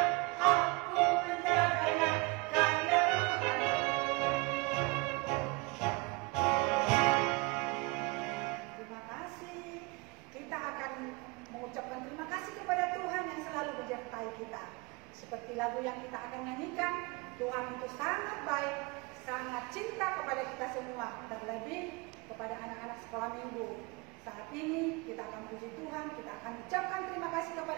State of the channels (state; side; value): quieter; left; 26.4 dB